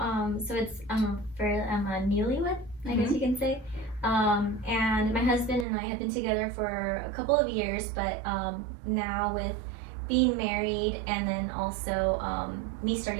So it's I'm a newlywed, I guess you can say. And my husband and I have been together for a couple of years, but now with being married and then also me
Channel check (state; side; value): drops out; left; at 5.7 s